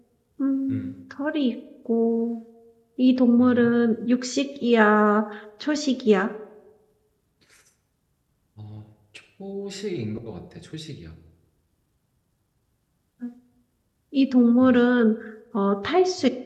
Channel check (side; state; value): both; identical; correlation 1.00